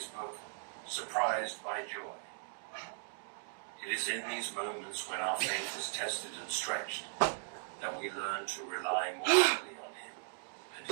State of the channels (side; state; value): left; silent; digital silence